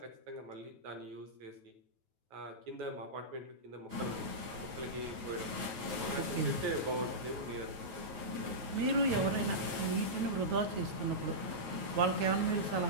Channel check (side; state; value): left; late; 9.2 ms